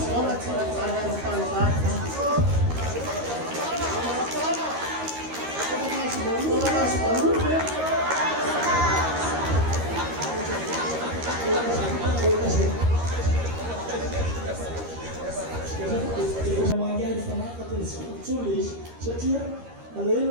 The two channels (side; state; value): left; late; 13 ms